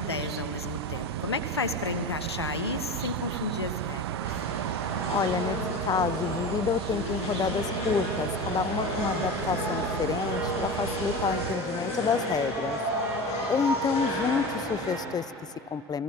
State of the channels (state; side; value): normal; both; correlation 0.28